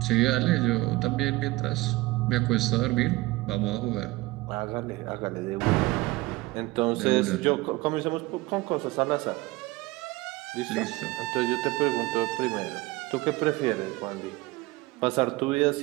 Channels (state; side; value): quieter; left; 20.8 dB